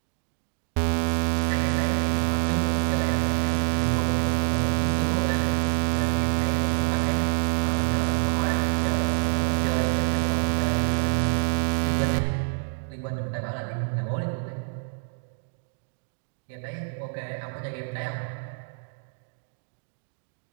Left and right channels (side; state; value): left; silent; digital silence